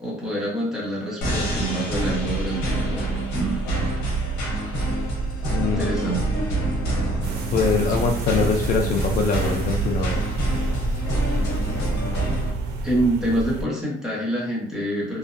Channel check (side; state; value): both; normal; correlation 0.59